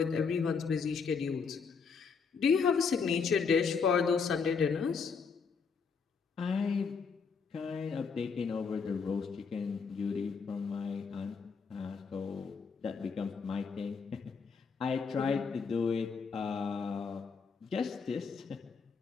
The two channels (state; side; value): quieter; right; 5.5 dB